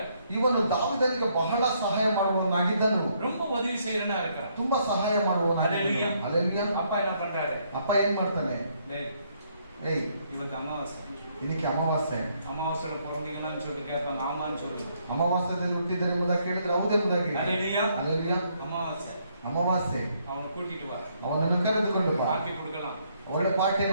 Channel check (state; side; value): inverted; both; correlation -0.71